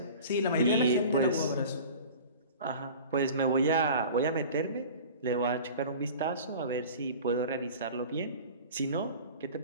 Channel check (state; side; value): inverted; both; correlation -0.39